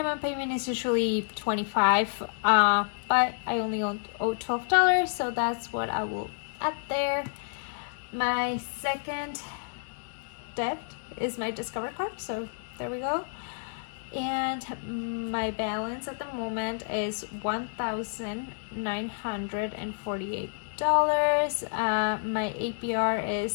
payment is usually $25, but I only owe $12, so that's what I will add there. My second debt is my Discover card, so there we go. And my balance at the moment is $1,948. My APR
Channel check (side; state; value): right; silent; 58 dB below the other